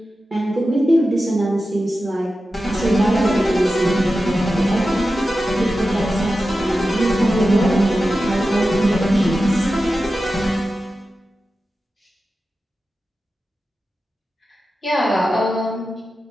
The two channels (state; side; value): normal; both; correlation 0.93